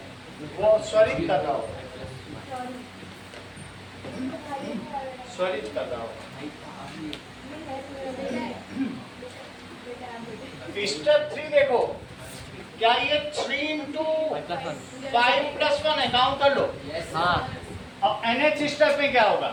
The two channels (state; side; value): identical; both; correlation 1.00